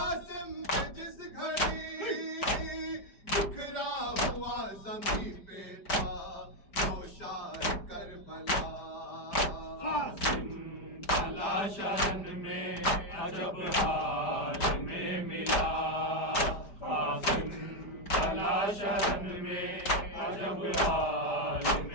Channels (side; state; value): right; late; 5.0 ms